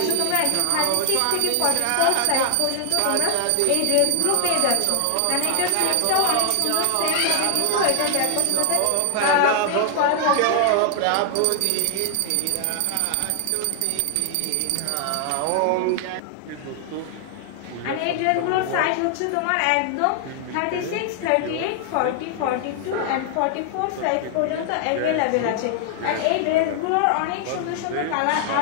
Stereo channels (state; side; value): different; both; correlation 0.00